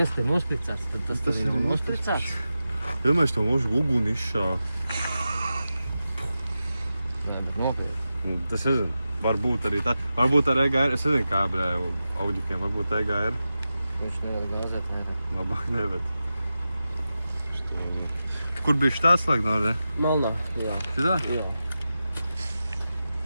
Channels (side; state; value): both; inverted; correlation -0.92